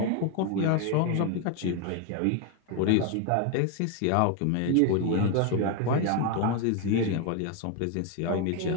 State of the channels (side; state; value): both; different; correlation 0.01